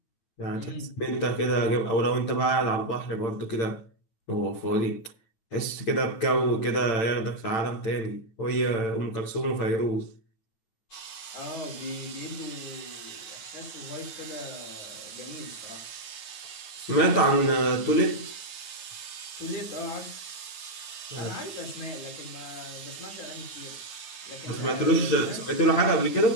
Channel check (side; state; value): right; late; 9.1 ms